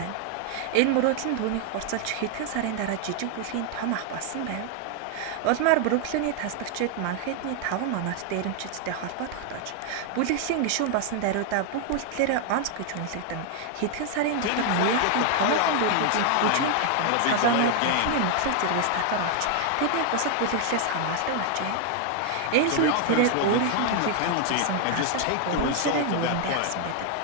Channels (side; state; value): both; different; correlation 0.00